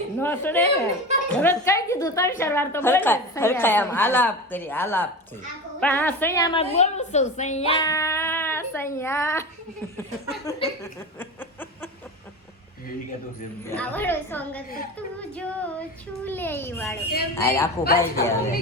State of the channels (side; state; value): both; normal; correlation 0.27